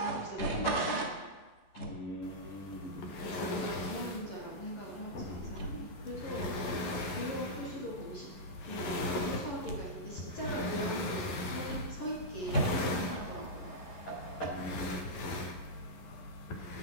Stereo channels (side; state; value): right; late; 11 ms